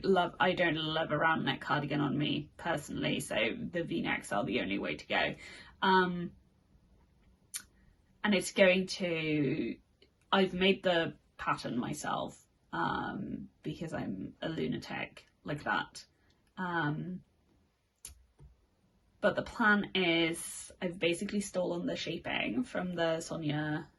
love a round neck cardigan on me personally, so the V-necks are the only way to go. And it's going to, I've made the pattern myself because I'm a lunatic like that. But the plan is, I've basically stolen the shaping from the Sonia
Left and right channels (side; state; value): both; identical; correlation 1.00